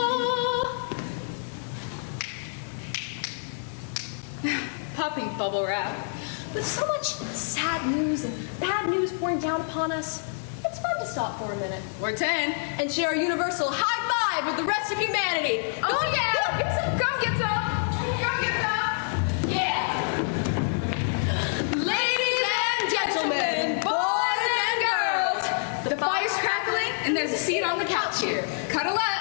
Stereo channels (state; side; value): silent; right; 60 dB below the other